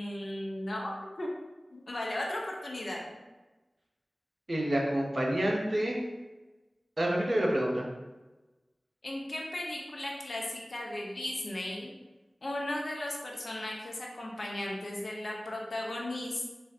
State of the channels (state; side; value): normal; both; correlation 0.96